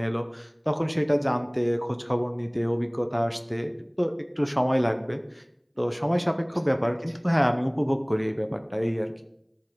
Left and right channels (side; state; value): both; identical; correlation 1.00